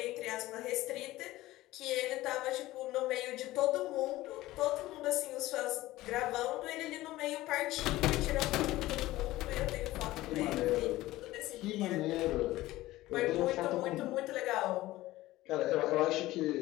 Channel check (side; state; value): right; quieter; 17.1 dB